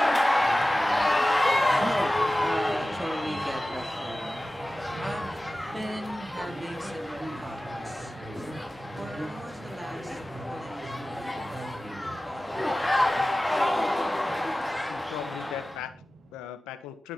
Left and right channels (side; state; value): both; normal; correlation 0.96